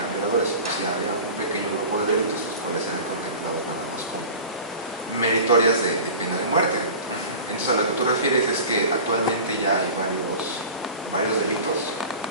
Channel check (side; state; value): both; inverted; correlation -0.37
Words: violadores. O sea, había un pequeño grupo de delitos los cuales eran contemplados nada más como meritorias de pena de muerte. Entonces, a lo que tú refieres es que actualmente ya hay varios delitos